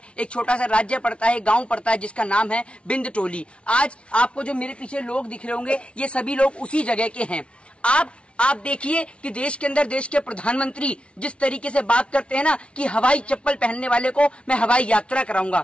एक छोटा सा राज्य पड़ता है, गांव पड़ता है जिसका नाम है बिंदटोली। आज आपको जो मेरे पीछे लोग दिख रहे होंगे, ये सभी लोग उसी जगह के हैं। आप देखिए कि देश के अंदर देश के प्रधानमंत्री जिस तरीके से बात करते हैं ना कि हवाई चप्पल पहनने वाले को मैं हवाई यात्रा कराऊंगा।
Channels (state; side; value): late; right; 0.060 ms